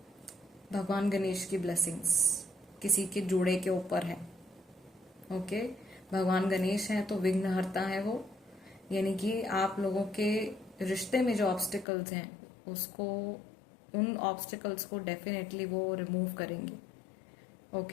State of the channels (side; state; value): right; drops out; at 11.9 s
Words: भगवान गणेश की ब्लेसिंग्स किसी के जोड़े के ऊपर है, ओके। भगवान गणेश है तो विघ्नहर्ता है वो, यानी कि आप लोगों के रिश्ते में जो ऑब्स्टिकल्स हैं उसको, उन ऑब्स्टिकल्स को डेफिनेटली वो रिमूव करेंगे,